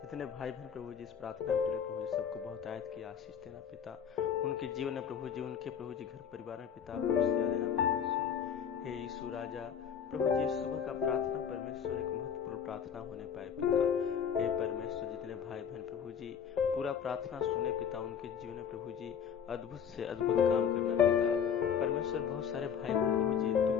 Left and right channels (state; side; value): quieter; right; 7.8 dB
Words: जितने भाई बहन प्रभु जी इस प्रार्थना के लिए प्रभु जी सबको बहुत आयत की आशीष देना पिता। उनके जीवन में प्रभु जी, उनके प्रभु जी घर परिवार में पिता खुशियाँ देना परमेश्वर। हे यीशु राजा प्रभु जी, सुबह का प्रार्थना परमेश्वर एक महत्वपूर्ण प्रार्थना होने पाए पिता। हे परमेश्वर, जितने भाई बहन प्रभु जी पूरा प्रार्थना सुने पिता, उनके जीवन में प्रभु जी अद्भुत से अद्भुत काम करना पिता। परमेश्वर, बहुत सारे भाई बहन प्रभु जी